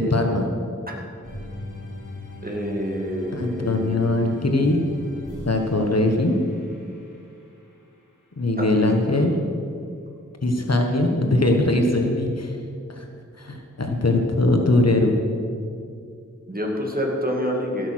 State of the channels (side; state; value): both; normal; correlation 0.56